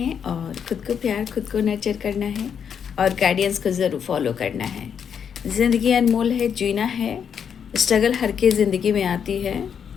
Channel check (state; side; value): quieter; right; 7.6 dB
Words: और खुद को प्यार, खुद को नर्चर करना है और गाइडेंस को ज़रूर फॉलो करना है। ज़िंदगी अनमोल है, जीना है। स्ट्रगल हर की ज़िंदगी में आती है।